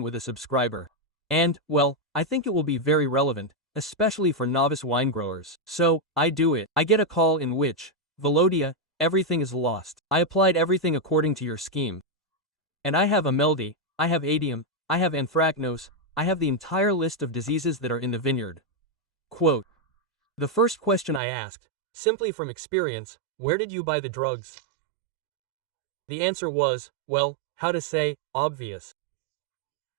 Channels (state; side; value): drops out; left; at 21.2 s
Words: with a subscriber. And, well, I think it will be very relevant, especially for novice wine growers. So, I do it. I get a call in which, Velodia, everything is lost. I applied everything according to your scheme. And I have ameldy, I have adium, I have anthracnose, I have the entire list of diseases that are in the vineyard. Quote. The first question I asked, simply from experience, where did you buy the drugs? The answer was, well, how to say, obvious.